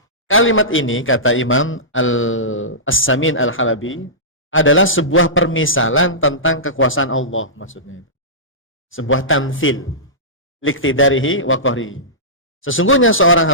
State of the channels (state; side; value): normal; both; correlation -0.19